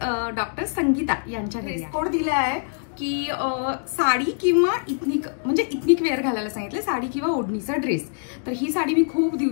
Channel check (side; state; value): right; silent; digital silence